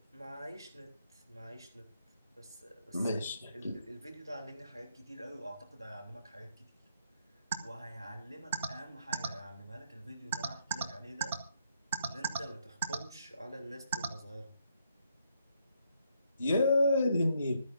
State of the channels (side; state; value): both; inverted; correlation -0.73